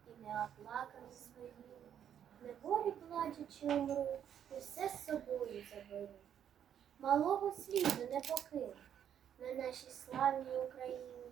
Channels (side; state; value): left; quieter; 9.3 dB